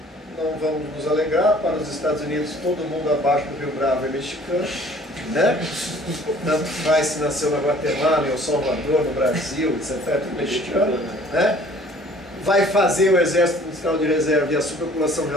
não vamos nos alegrar, para os Estados Unidos todo mundo abaixo do Rio Bravo é mexicano, né? Tanto faz se nasceu na Guatemala, em El Salvador, no Brasil, etc. É tudo mexicano, né? Vai fazer o exército industrial de reserva e a superpopulação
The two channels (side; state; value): both; normal; correlation 0.53